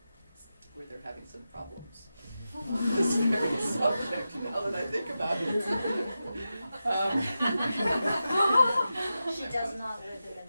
where they're having some problems on this very subject, now that I think about it. She does not live in the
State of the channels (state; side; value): inverted; both; correlation -0.91